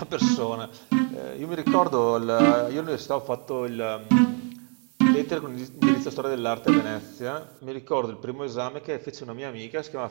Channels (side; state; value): left; quieter; 39.7 dB